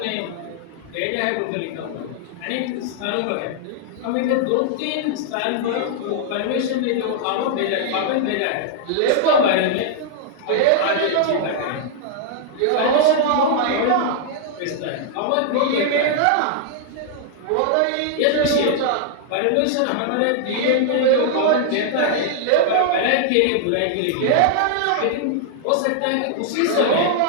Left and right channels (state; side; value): different; both; correlation 0.00